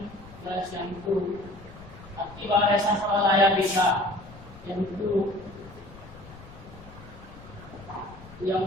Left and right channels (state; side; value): noise; left; rumble, 18 dB below the sound